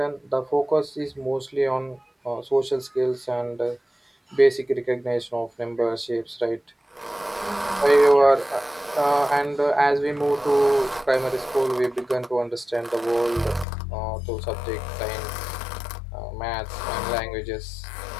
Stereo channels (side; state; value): right; drops out; at 13.7 s